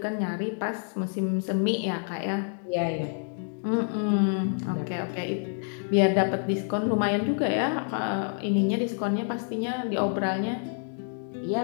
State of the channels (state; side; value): silent; right; 58 dB below the other